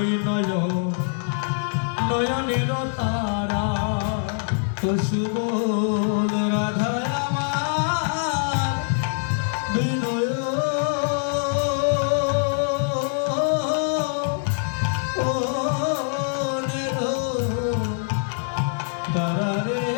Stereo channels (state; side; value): silent; right; digital silence